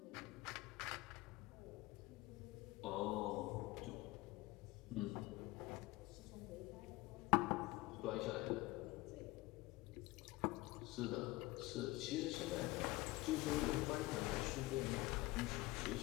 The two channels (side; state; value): right; quieter; 20.0 dB